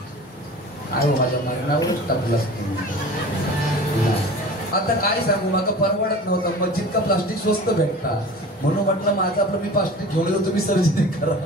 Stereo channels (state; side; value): normal; both; correlation 0.39